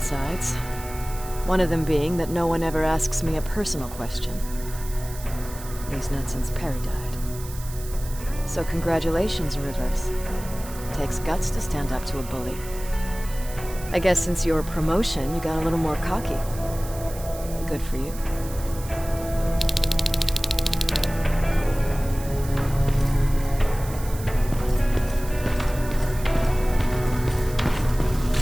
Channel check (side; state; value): right; noise; hiss, 15 dB below the sound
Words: One of them being that no one ever asks me a personal question. At least not since Perry died. So congratulations, Rivers. Takes guts to stand up to a bully. I guess since your promotion, you got a little more cocky. Good for you.